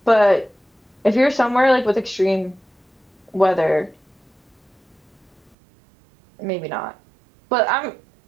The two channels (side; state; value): left; drops out; at 5.6 s